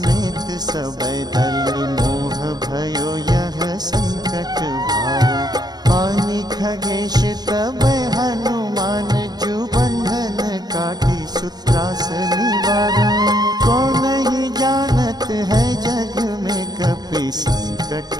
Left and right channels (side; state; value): left; late; 0.19 ms